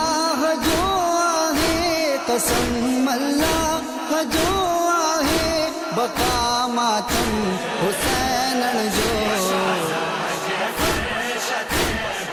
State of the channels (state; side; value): identical; both; correlation 1.00